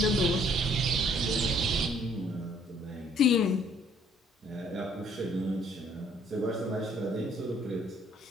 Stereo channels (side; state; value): both; normal; correlation 0.62